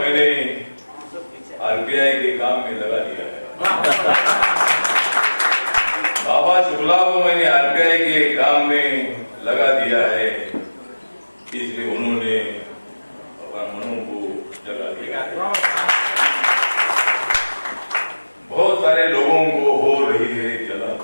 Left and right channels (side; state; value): both; inverted; correlation -1.00